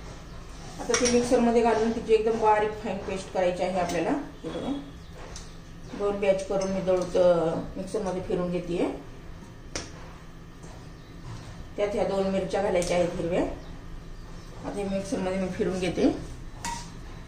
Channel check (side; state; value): both; identical; correlation 1.00